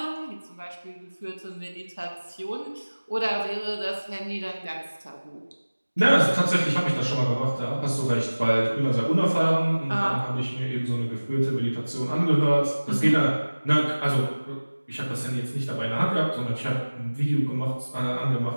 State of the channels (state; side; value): inverted; both; correlation -1.00